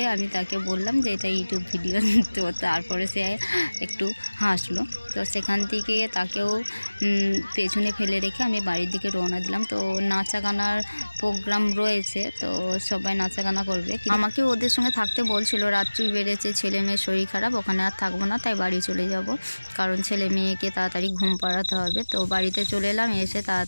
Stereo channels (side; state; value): both; inverted; correlation -1.00